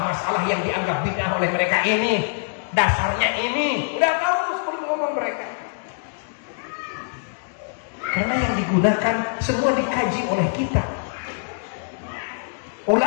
yang dianggap bid'ah oleh mereka ini, dasarnya ini, udah tahu sebelum ngomong mereka. Karena yang digunakan semua dikaji oleh kita.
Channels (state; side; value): silent; right; digital silence